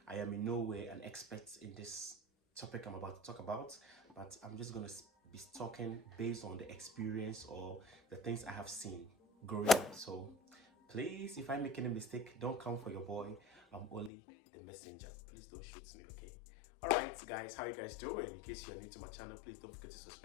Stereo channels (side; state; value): right; drops out; at 14.1 s